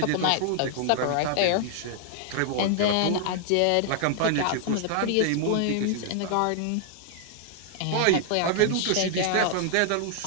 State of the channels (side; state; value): both; different; correlation 0.00